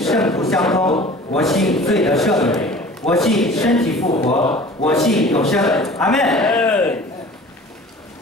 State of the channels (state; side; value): normal; both; correlation 0.44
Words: 徒相通，我信罪得赦免，我信身体复活，我信永生。阿门。